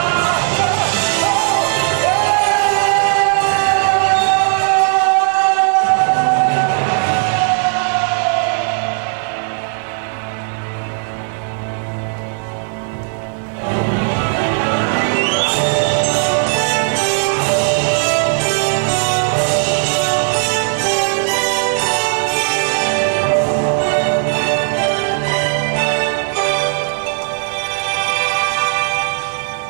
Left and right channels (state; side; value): silent; left; 59 dB below the other